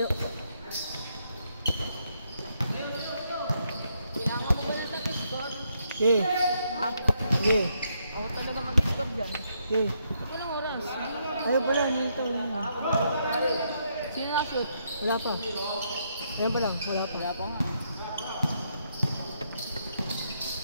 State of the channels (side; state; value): both; inverted; correlation -0.76